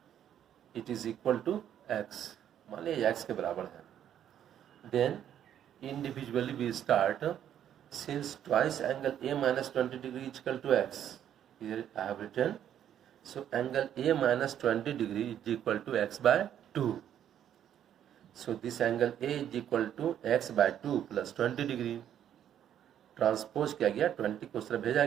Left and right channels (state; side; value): quieter; left; 10.1 dB